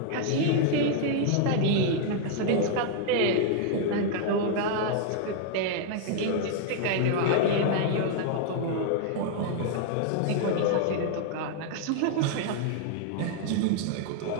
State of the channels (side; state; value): both; different; correlation 0.00